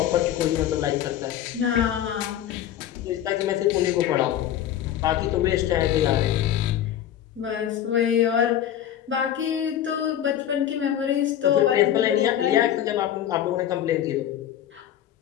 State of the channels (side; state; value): right; quieter; 10.9 dB